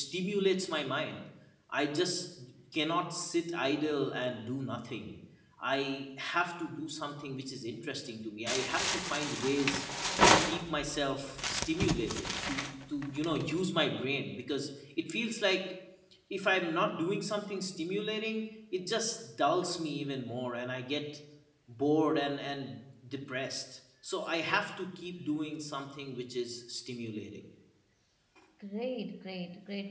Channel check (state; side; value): identical; both; correlation 1.00